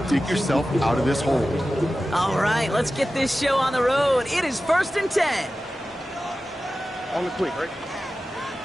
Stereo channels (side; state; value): both; normal; correlation 0.94